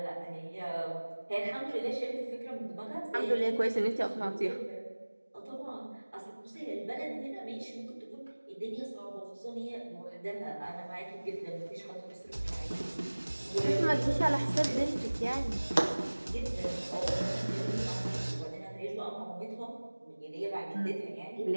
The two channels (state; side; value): inverted; both; correlation -1.00